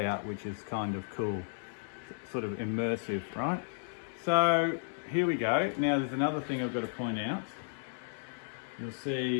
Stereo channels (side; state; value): right; silent; 55 dB below the other